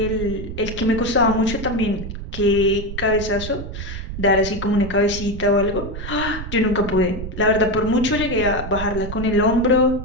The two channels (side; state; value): right; noise; rumble, 8 dB below the sound